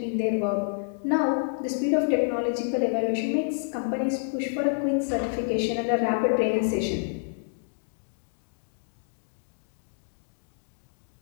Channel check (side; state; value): right; silent; digital silence